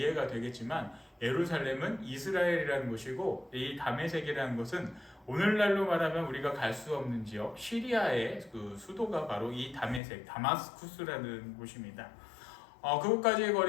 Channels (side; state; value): right; drops out; at 10.0 s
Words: 되겠지만 예루살렘은 이스라엘이라는 곳이고 이 다메섹이라는 것은 오늘날로 말하면 우리가 갈 수 없는 지역 시리아의 그 수도가 바로 이 다마스쿠스라는 곳입니다. 그곳까지의